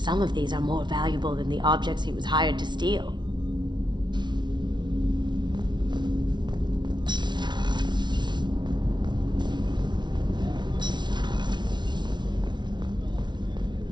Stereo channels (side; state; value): left; late; 0.21 ms